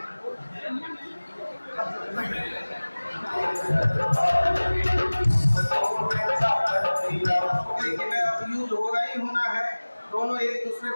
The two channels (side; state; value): both; inverted; correlation -1.00